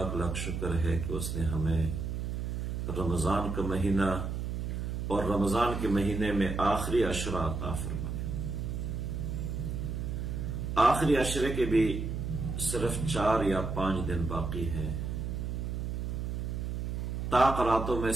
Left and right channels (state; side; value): noise; right; hum, 3 dB below the sound